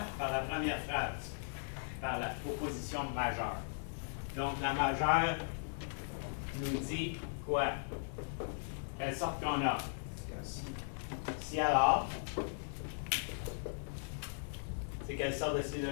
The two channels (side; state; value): right; silent; digital silence